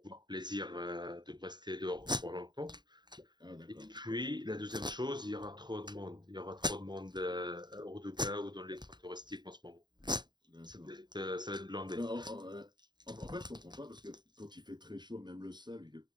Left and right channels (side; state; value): left; late; 0.21 ms